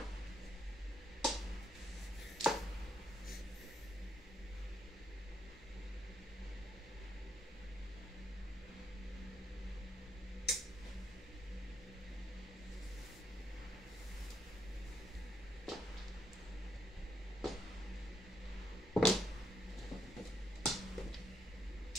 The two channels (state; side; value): normal; both; correlation 0.76